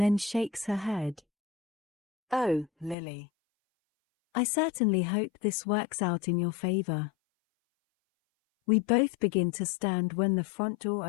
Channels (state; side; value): drops out; right; at 3.0 s